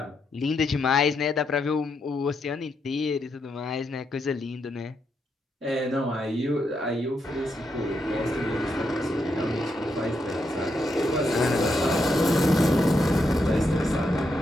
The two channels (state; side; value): normal; both; correlation 0.81